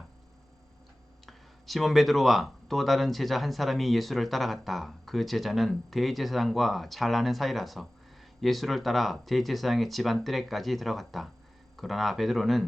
시몬 베드로와 또 다른 제자 한 사람이 예수를 따라갔다. 그 제자는 대제사장과 잘 아는 사이라서 예수를 따라 대제사장의 집안 뜰에까지 들어갔다. 그러나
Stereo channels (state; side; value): normal; both; correlation 0.97